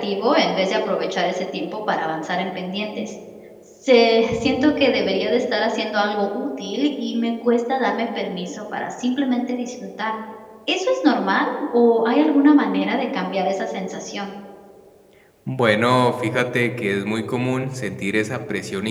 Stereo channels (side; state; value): both; identical; correlation 1.00